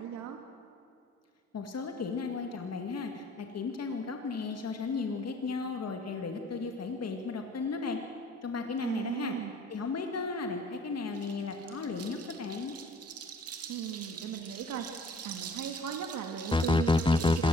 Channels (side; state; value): both; normal; correlation 0.53